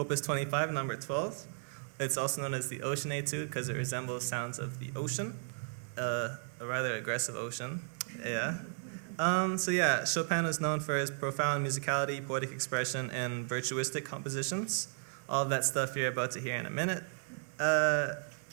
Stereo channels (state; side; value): silent; left; 55 dB below the other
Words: 25, number 12. It's also known as the Ocean Etude because it resembles sounds of the ocean, a rather aggressive ocean. Yeah. Chopin is known for his profound musicality, poetic expression, and virtuistic compositions. All of that stuff you're about to hear in a minute.